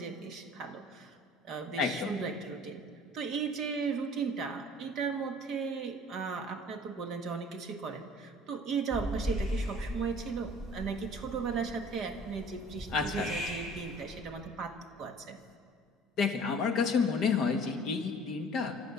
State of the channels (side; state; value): both; normal; correlation 0.49